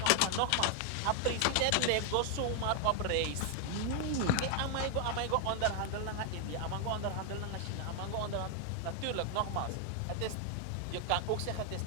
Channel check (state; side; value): different; both; correlation 0.00